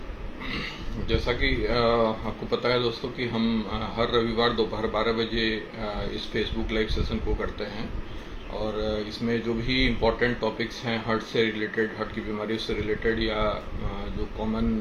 जैसा कि आपको पता है दोस्तों कि हम हर रविवार दोपहर 12 बजे इस फेसबुक लाइव सेशन को करते हैं और इसमें जो भी इम्पोर्टेंट टॉपिक्स हैं हार्ट से रिलेटेड, हार्ट की बीमारियों से रिलेटेड या जो कॉमन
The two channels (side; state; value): both; identical; correlation 1.00